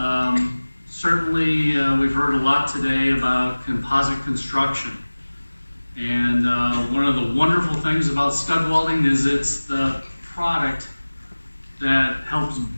Certainly, we've heard a lot today about composite construction. And one of the wonderful things about stud welding is it's the product that helps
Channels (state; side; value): inverted; both; correlation -1.00